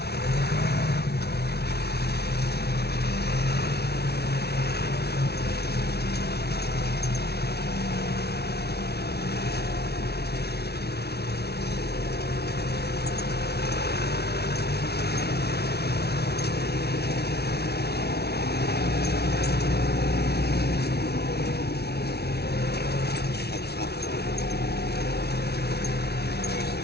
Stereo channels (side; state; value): right; late; 0.47 ms